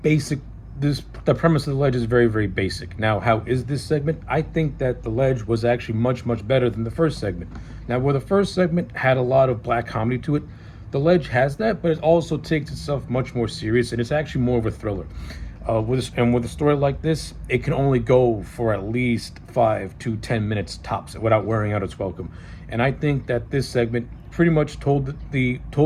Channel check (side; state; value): both; identical; correlation 1.00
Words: premise of The Ledge is very, very basic. Now, how is this segment? I think that The Ledge was actually much, much better than the first segment. Now, where the first segment had a lot of black comedy to it, The Ledge has that, but it also takes itself much more serious, and it's actually more of a thriller. With a story like this, it can only go for at least 5 to 10 minutes tops without wearing out its welcome. And I think that this segment pretty much told